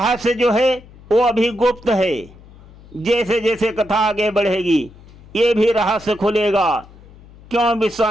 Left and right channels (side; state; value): left; noise; hum, 22 dB below the sound